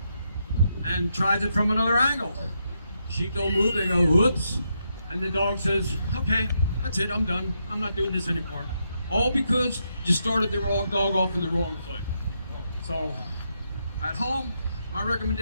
and tries it from another angle. Sheep don't move, they go, whoops, and the dog says, okay, that's it, I'm done. I'm not doing this anymore. All because you started the wrong dog off in the wrong foot. So, at home, my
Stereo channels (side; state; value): both; inverted; correlation -0.81